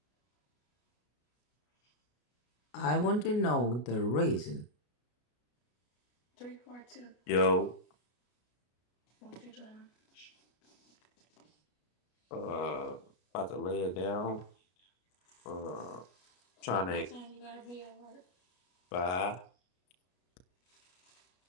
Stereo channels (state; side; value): late; right; 33 ms